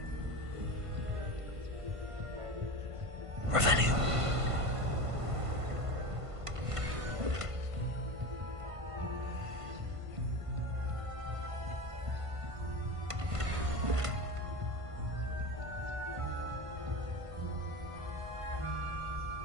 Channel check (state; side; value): late; left; 1.5 ms